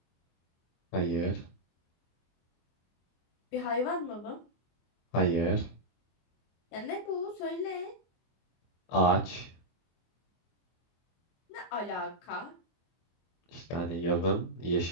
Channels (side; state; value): right; late; 24 ms